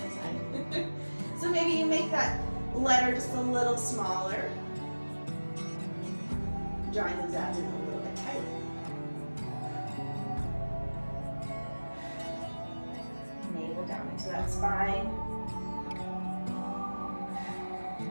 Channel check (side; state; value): both; inverted; correlation -1.00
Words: side. So maybe you make that letter just a little smaller. Drawing those abs in a little bit tighter. Down into that spine.